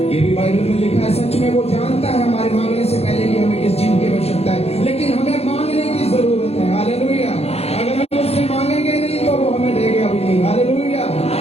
ये भी बाइबल में लिखा है। सच में वो जानता है हमारे मांगने से पहले कि हमें किस चीज की आवश्यकता है, लेकिन हमें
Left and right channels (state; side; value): late; right; 0.30 ms